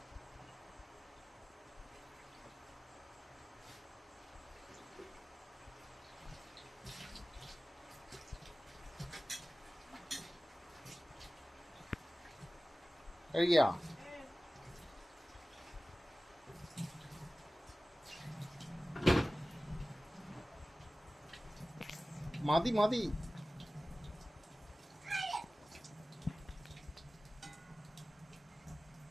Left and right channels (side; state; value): both; normal; correlation 0.97